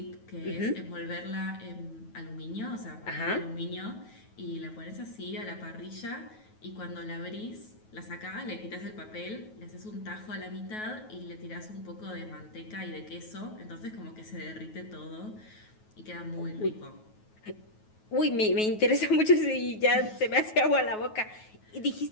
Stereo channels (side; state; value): right; late; 9.3 ms